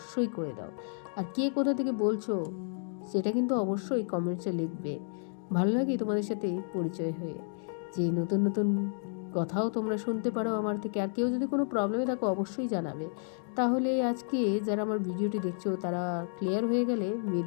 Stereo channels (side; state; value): right; silent; digital silence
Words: করে দাও, আর কে কোথা থেকে বলছো সেটা কিন্তু অবশ্যই কমেন্টসে লিখবে। ভালো লাগে তোমাদের সাথে পরিচয় হয়ে, যে নতুন নতুন কথাও তোমরা শুনতে পারো আমার থেকে। আর কেউ যদি কোনো প্রবলেমে থাকো অবশ্যই জানাবে। তাহলে আজকে যারা আমার ভিডিওটি দেখছো তারা ক্লিয়ার হয়ে গেলে